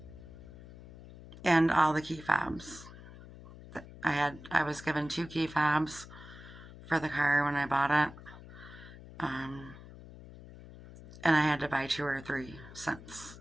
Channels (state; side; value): noise; left; hum, 16 dB below the sound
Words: And all the key fobs. I was given 2 key fobs for the car when I bought it. And I had to buy 2 or 3 since